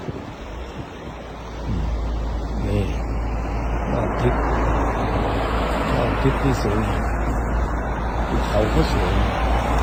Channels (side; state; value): both; identical; correlation 1.00